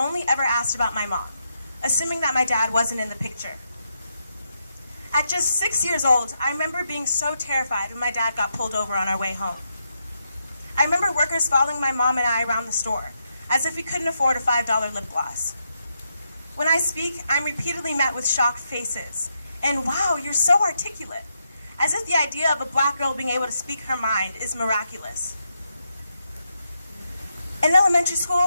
ever asked about my mom, assuming that my dad wasn't in the picture. At just 6 years old, I remember being so terrified when my dad got pulled over on our way home. I remember workers following my mom and I around the store, as if we couldn't afford a $5 lip gloss. When I speak, I'm repeatedly met with shocked faces, and wow, you're so articulate, as if the idea of a black girl being able to speak her mind is miraculous. In elementary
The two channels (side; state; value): both; inverted; correlation -0.82